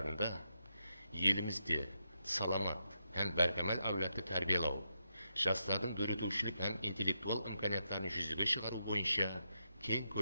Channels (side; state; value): both; inverted; correlation -0.83